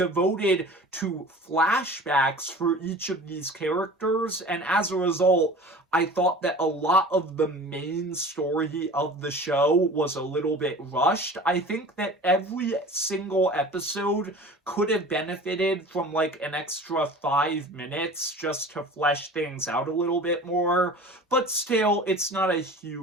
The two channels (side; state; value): both; normal; correlation 0.40